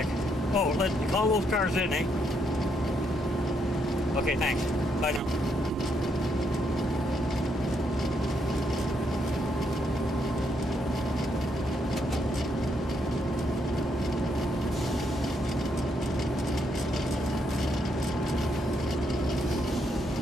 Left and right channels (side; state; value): both; normal; correlation 0.76